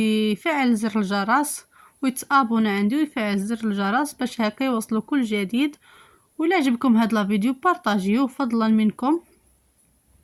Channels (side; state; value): both; identical; correlation 1.00